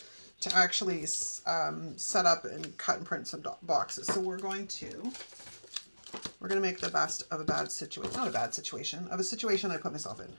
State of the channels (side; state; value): both; inverted; correlation -1.00